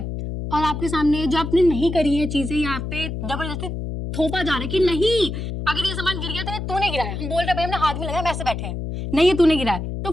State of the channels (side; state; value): left; noise; hum, 5 dB below the sound